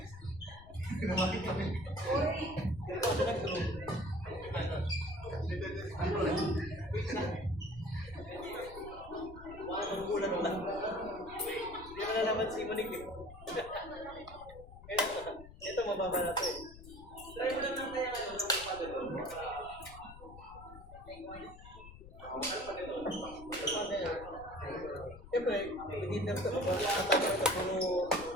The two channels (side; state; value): left; noise; rumble, 16 dB below the sound